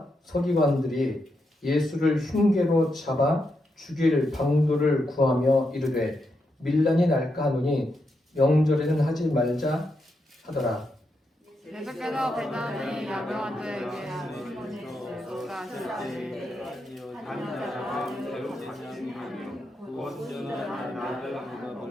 서기관들이 예수를 흉계로 잡아 죽일 방도를 구하며 이르되 밀란이 날까 하노니 명절에는 하지 말자 하더라. 예수께서 베다니 야명한 자에게 하시니 예수가 하시되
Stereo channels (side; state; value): both; normal; correlation 0.83